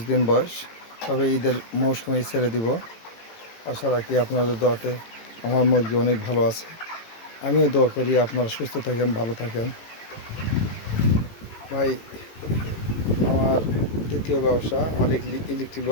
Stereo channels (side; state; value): right; late; 18 ms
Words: দিন বয়স, তবে ঈদের মৌসুমে ছেড়ে দিব। আশা রাখি আপনাদের দোয়াতে আমার মুরগি অনেক ভালো আছে। আমিও দোয়া করি আপনারা সুস্থ থাকেন, ভালো থাকেন। ভাই, আমার দ্বিতীয় ব্যবসা, আমার ইলেকট্রিক